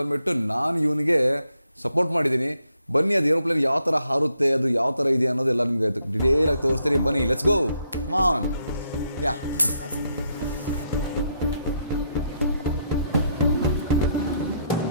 ಬಂದುಬಿಟ್ಟು ನಾನು ಇವನಿಗೆ ಸಪೋರ್ಟ್ ಮಾಡಿದ್ದೀನಿ. ಬನ್ನಿ, ಅದು ಏರೋಪ್ಲೇನ್ ಯಾವ ಥರ ಹಾರುತ್ತೆ, ಅದು ಯಾವ ಥರ ಇದೆ ಅನ್ನೋದೆಲ್ಲ ನಿಮಗೆ ಡಿಟೇಲಾಗಿ ತೋರಿಸ್ತೀನಿ. ಬನ್ನಿ, let's go, come on. Yeah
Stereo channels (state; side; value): inverted; both; correlation -0.77